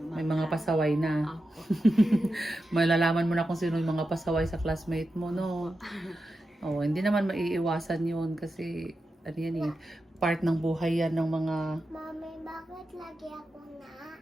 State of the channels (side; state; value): both; normal; correlation 0.90